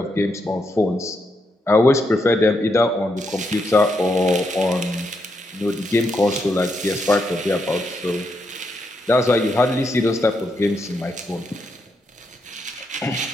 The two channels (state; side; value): normal; both; correlation 0.81